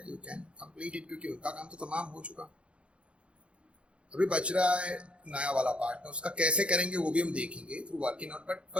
यू कैन कंप्लीट इट, क्योंकि उनका काम तो तमाम हो चुका। अभी बच रहा है नया वाला पार्टनर, उसका कैसे करेंगे वो भी हम देखेंगे through working out. But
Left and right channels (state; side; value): late; left; 0.059 ms